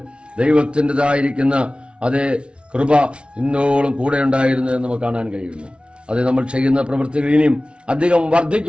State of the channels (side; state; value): left; late; 0.058 ms